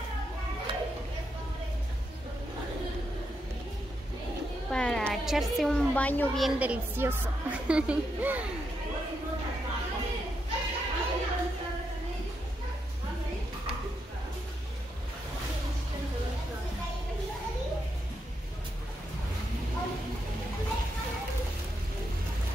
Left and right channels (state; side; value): normal; both; correlation 0.82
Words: Para echarse un baño bien delicioso.